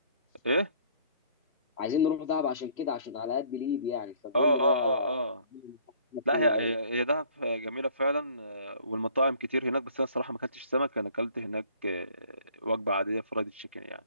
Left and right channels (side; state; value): both; inverted; correlation -0.57